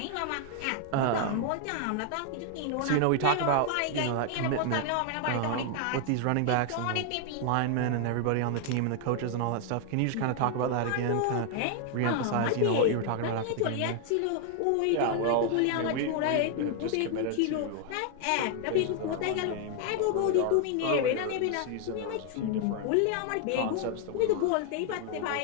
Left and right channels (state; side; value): different; both; correlation 0.00